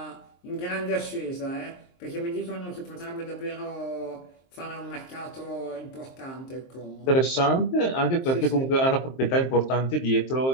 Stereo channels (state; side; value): late; right; 23 ms